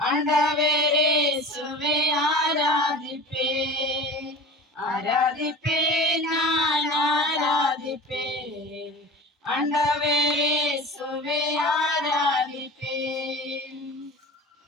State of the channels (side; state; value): both; normal; correlation 0.35